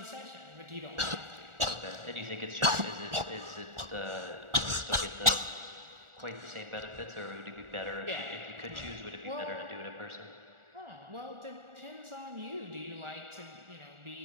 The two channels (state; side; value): late; left; 1.4 ms